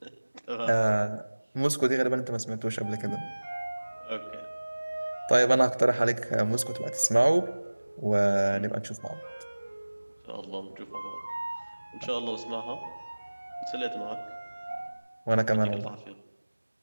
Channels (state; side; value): inverted; both; correlation -1.00